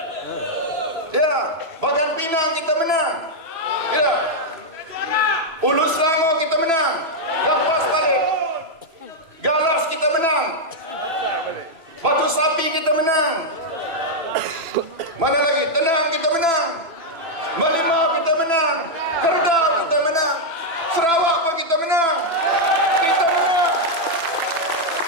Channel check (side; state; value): left; late; 3.0 ms